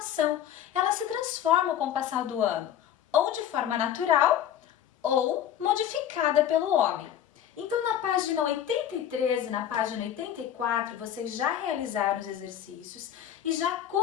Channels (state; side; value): quieter; right; 10.4 dB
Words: Ela se transforma com o passar do ano, ou de forma natural, ou modificada pelo homem. Então, na página 83 e na página 84, vocês já realizaram os exercícios e já